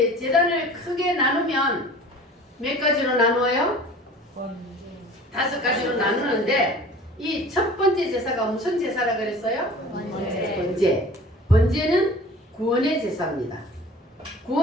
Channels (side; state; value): both; normal; correlation 0.43